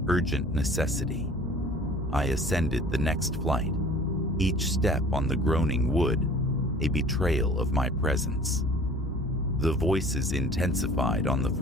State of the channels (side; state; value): both; normal; correlation 0.48